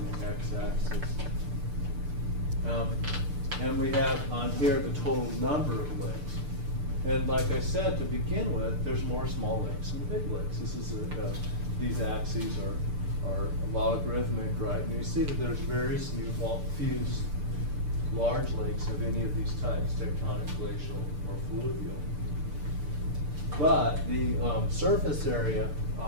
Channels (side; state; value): left; late; 6.8 ms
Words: the x-axis. And we have on here the total number of lakes. And like I said, to begin with, there's more small lakes than big lakes. This is these axes are are logarithmic, right? And you see that there's very few large lakes of any of these types, tectonic, glacial, or fluvial. But the surface area,